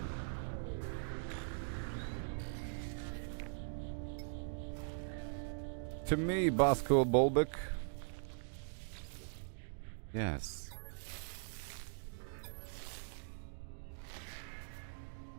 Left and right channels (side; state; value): left; silent; digital silence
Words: To me, Bosco Bulbic. Yes.